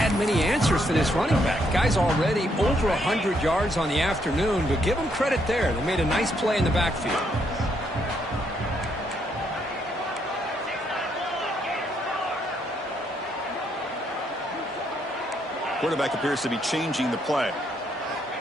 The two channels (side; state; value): both; normal; correlation 0.74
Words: many answers for this running back. Guy's already over 100 yards on the afternoon, but give them credit there. They made a nice play in the backfield. Quarterback appears to be changing the play.